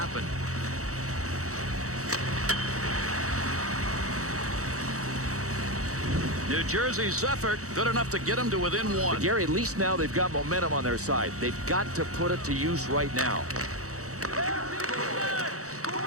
New Jersey's effort good enough to get them to within one. But Gary, at least now they've got momentum on their side. They've got to put it to use right now.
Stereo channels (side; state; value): left; late; 0.65 ms